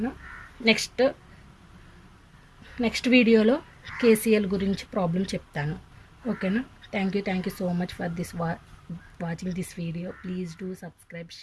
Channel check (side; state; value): both; identical; correlation 1.00